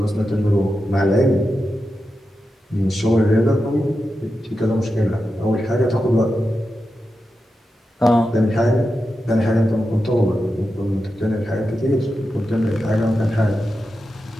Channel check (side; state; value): both; normal; correlation 0.90